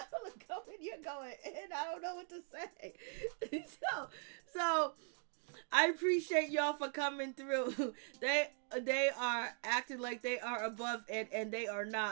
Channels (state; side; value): silent; left; 51 dB below the other